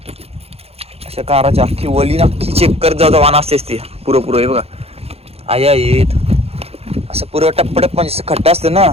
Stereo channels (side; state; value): left; late; 0.29 ms